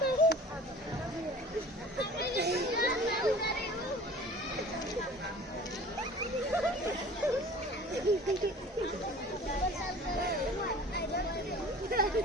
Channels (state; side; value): normal; both; correlation 0.44